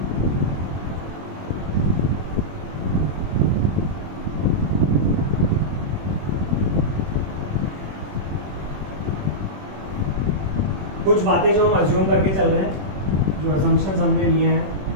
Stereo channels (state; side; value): late; left; 21 ms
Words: कुछ बातें जो हम अज्यूम करके चल रहे हैं, जो असम्पशंस हमने लिए हैं,